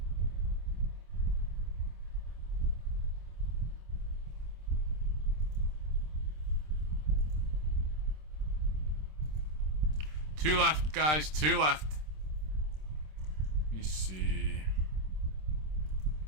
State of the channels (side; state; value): left; late; 26 ms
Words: Two left, guys. 2 left. Let me see.